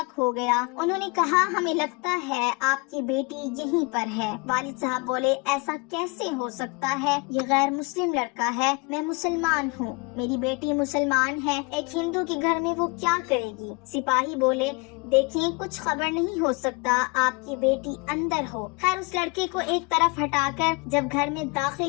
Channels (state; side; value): quieter; right; 29.5 dB